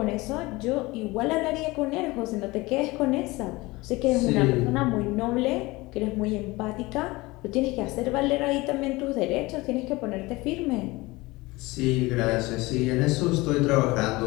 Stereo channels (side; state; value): right; quieter; 21.9 dB